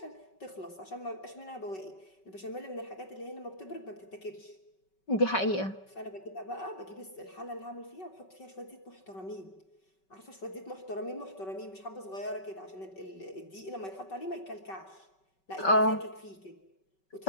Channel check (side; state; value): right; late; 5.3 ms